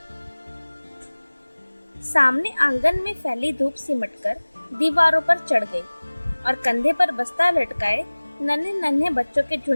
सामने आंगन में फैली धूप सिमटकर दीवारों पर चढ़ गई और कंधे पर बस्ता लटकाए नन्हे नन्हे बच्चों के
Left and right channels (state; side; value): inverted; both; correlation -1.00